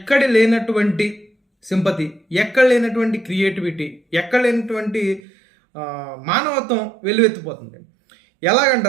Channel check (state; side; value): drops out; left; at 5.2 s